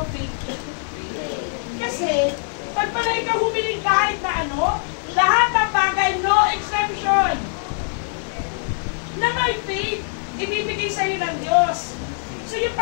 faith. Kasi, pag pala ikaw humiling kahit na ano, lahat ng bagay, no exception, na may faith, ibibigay sa'yo ng Diyos. So yung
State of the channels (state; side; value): silent; right; 64 dB below the other